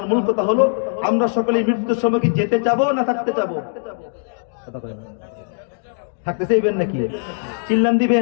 মূল কথা হলো, আমরা সকলে মৃত্যুর সময় কি যেতে চাবো না থাকতে চাবো? থাকতে চাইবেন নাকি? চিল্লান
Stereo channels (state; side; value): silent; right; 65 dB below the other